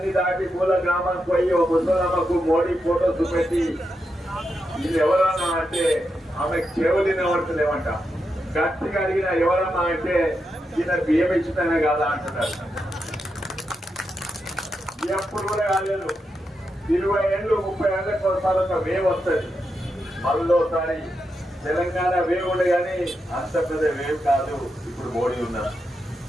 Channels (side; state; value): both; normal; correlation 0.86